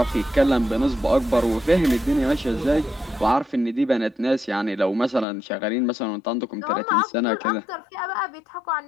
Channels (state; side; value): drops out; right; at 5.2 s